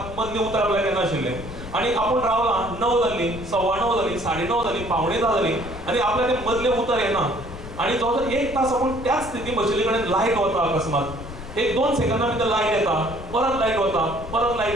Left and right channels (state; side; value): noise; left; rumble, 12 dB below the sound